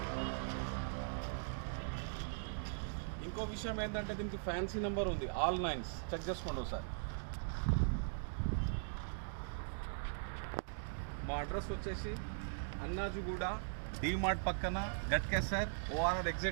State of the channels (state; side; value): silent; left; digital silence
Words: ఇంకో విషయం ఏంటంటే దీనికి ఫ్యాన్సీ నెంబర్ ఉంది, ఆల్ 9s. చెక్ చేసుకోండి ఒకసారి. మా అడ్రస్ వచ్చేసి అన్నాజుగూడ, డీమార్ట్ పక్కన, Ghatkesar, ORR